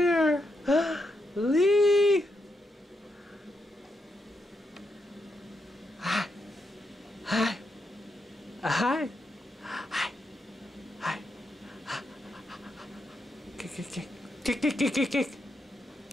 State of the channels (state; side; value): normal; both; correlation 0.82